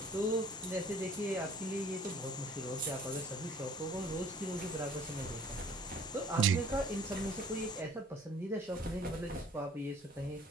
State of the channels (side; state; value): both; normal; correlation 0.54